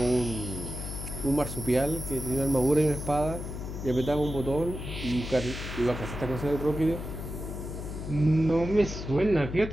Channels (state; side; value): noise; left; hum, 7 dB below the sound